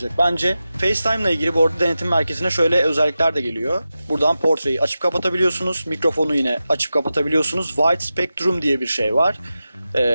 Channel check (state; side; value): inverted; both; correlation -0.93